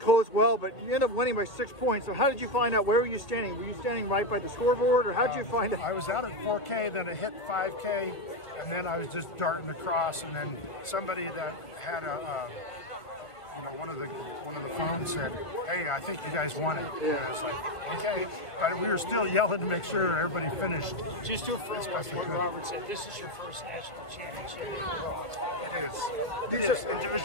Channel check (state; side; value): late; right; 1.7 ms